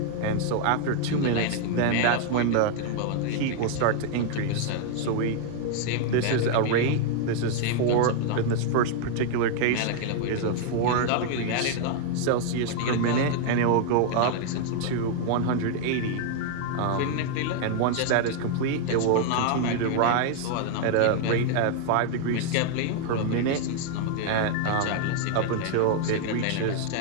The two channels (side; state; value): both; different; correlation 0.00